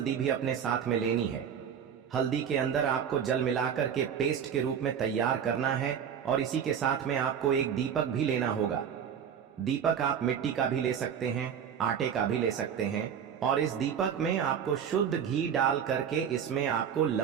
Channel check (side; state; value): left; quieter; 8.1 dB